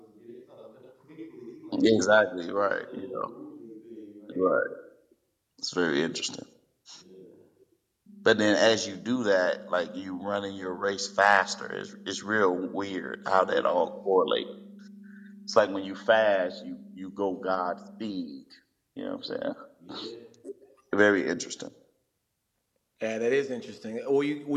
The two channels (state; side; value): identical; both; correlation 1.00